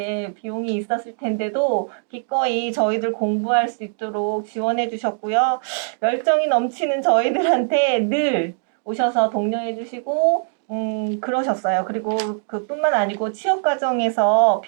비용이 있었을 텐데도 기꺼이 저희들 공부할 수 있도록 지원해 주셨고요. 열정이 넘치는 저희들한테 늘 오셔서 독려해 주시고 그러셨어요. 그리고 그뿐만 아니고 취업 과정에서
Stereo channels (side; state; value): left; silent; digital silence